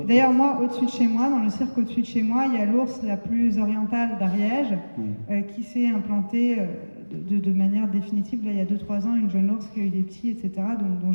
D'ailleurs, moi, au-dessus de chez moi, dans le cirque au-dessus de chez moi, il y a l'ours la plus orientale d'Ariège, qui s'est implantée de manière définitive. Là, il y a 2-3 ans, une jeune ours qui a eu des petits, etc., dont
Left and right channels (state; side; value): inverted; both; correlation -1.00